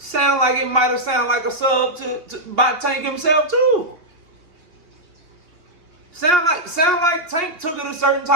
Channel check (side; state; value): left; late; 3.0 ms